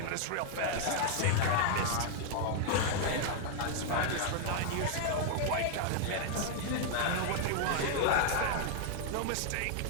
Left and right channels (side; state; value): both; different; correlation -0.01